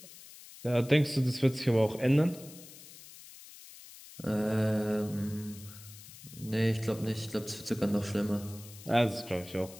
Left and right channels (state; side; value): noise; left; hiss, 18 dB below the sound